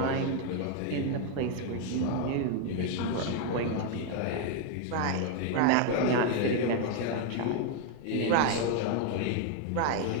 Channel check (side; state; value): both; different; correlation 0.00